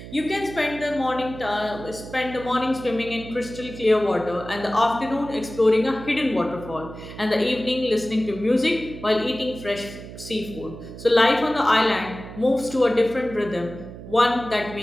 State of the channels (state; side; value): noise; right; hum, 13 dB below the sound